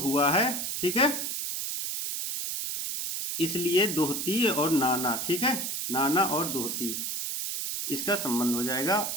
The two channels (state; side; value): noise; right; hiss, 3 dB below the sound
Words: हुआ है। ठीक है, इसलिए दोहती और नाना। ठीक है, नाना और दोहती इसका संबंध हो